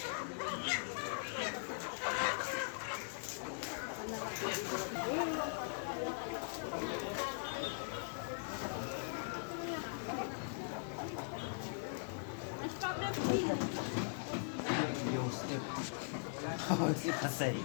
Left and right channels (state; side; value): silent; right; digital silence